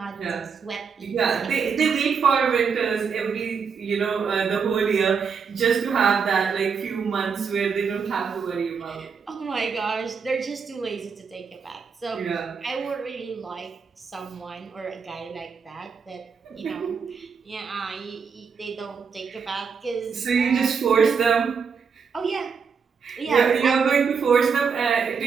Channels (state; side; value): quieter; left; 6.0 dB